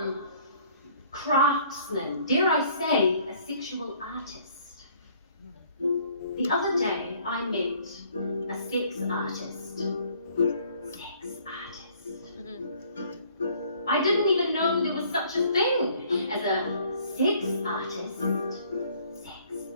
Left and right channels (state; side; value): inverted; both; correlation -0.59